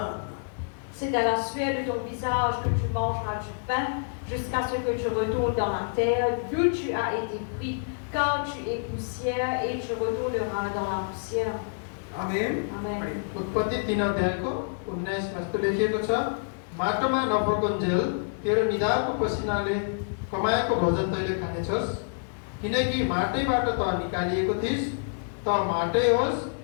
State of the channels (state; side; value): silent; right; digital silence